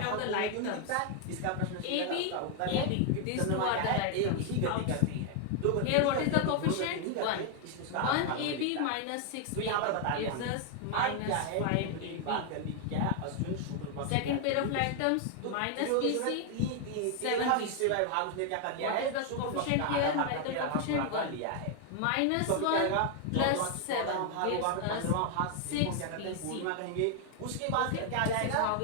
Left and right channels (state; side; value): different; both; correlation 0.00